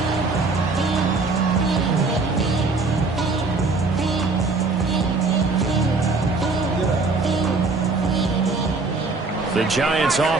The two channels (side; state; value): left; quieter; 3.8 dB